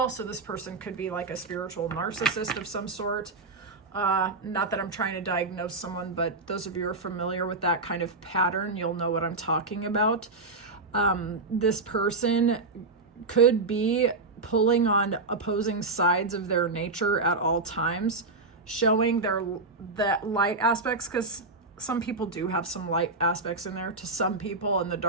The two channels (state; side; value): quieter; left; 3.6 dB